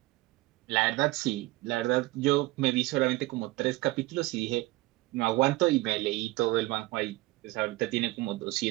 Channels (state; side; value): quieter; left; 20.1 dB